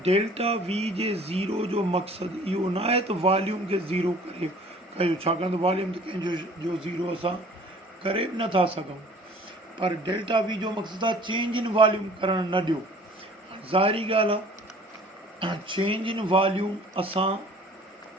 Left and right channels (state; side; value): normal; both; correlation 0.50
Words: डेल्टा V जे ज़ीरो जो मक़सदु इहो न आहे त वॉल्यूम खे ज़ीरो करे कयो, छाकाणि त वॉल्यूम त कंहिंजो ज़ीरो असां करे बि नथा सघूं, पर डेल्टा V जो मक़सदु आहे चेंज इन वॉल्यूम करणु न ॾियो। ज़ाहिरी ॻाल्हि आहे चेंज इन वॉल्यूम असां